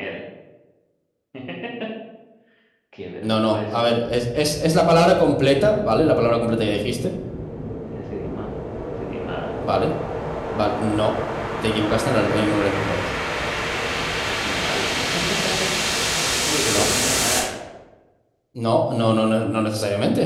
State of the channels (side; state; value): both; identical; correlation 1.00